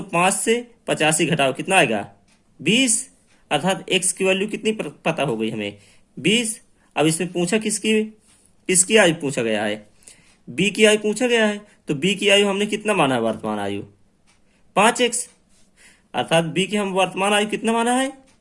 से 85 घटाओ कितना आएगा? 20, अर्थात x की वैल्यू कितनी पता हो गई हमें? 20। अब इसमें पूछा किसकी आयु पूछा गया है? b की आयु पूछा गया है। तो b की आयु हमने कितना माना है? वर्तमान आयु 5x, अर्थात b की हम वर्तमान आयु कितना माना है?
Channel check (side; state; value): both; identical; correlation 1.00